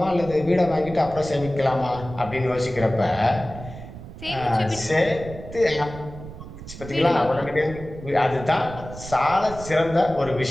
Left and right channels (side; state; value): right; noise; rumble, 13 dB below the sound